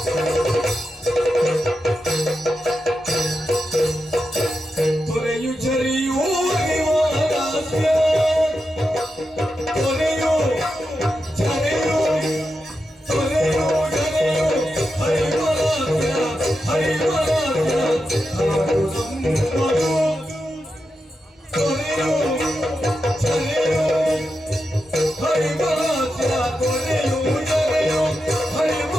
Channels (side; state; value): both; normal; correlation 0.88